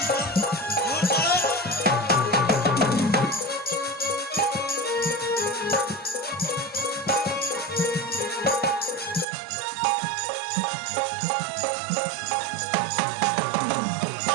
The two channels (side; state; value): left; drops out; at 9.2 s